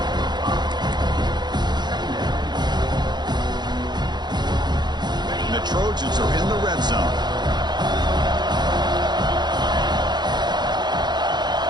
And the Trojans are in the red zone.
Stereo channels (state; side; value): late; left; 0.21 ms